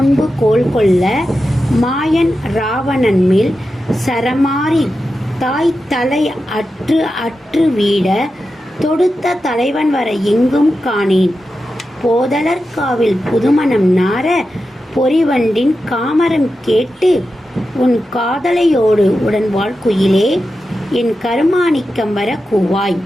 கோல் கொள்ள மாயன் ராவணன் மேல் சரமாரி தாய் தலை அற்று அற்று வீட தொடுத்த தலைவன் வர எங்கும் காணேன். போதலர்காவில் புதுமணம் நார பொறிவண்டின் காமரம் கேட்டு உன் காதலையோடு உடன் வாழ்க்குயிலே என் கருமாணிக்கம் வர கூவாய்.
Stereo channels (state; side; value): normal; both; correlation 0.91